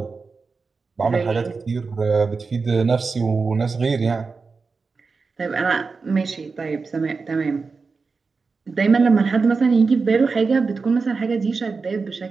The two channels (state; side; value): quieter; left; 4.5 dB